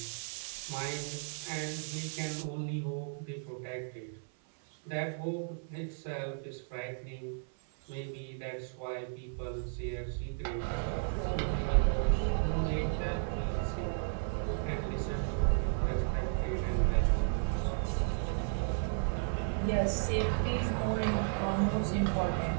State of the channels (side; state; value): left; silent; 55 dB below the other